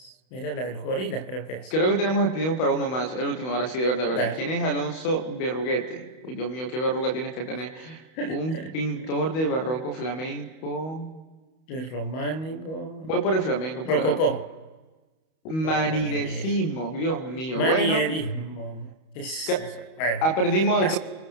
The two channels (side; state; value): right; late; 31 ms